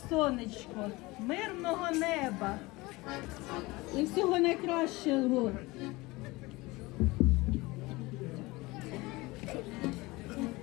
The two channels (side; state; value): right; quieter; 21.9 dB